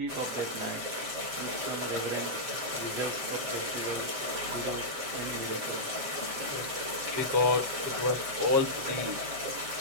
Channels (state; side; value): late; left; 7.6 ms